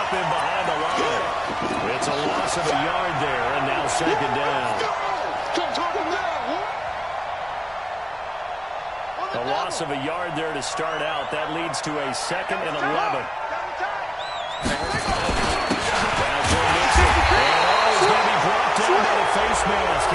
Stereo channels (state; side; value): identical; both; correlation 1.00